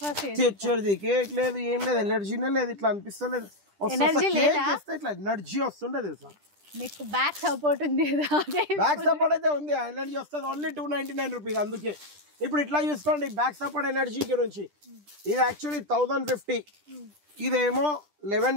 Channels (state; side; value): late; left; 10 ms